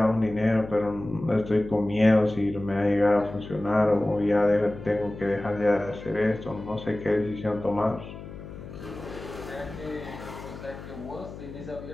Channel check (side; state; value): left; noise; hum, 13 dB below the sound